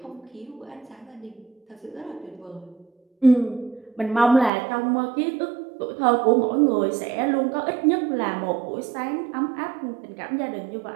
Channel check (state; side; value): drops out; left; at 4.5 s